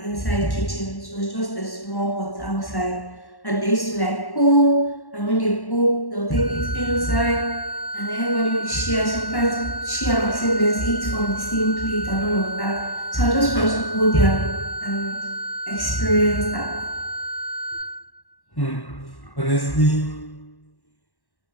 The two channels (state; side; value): late; right; 1.1 ms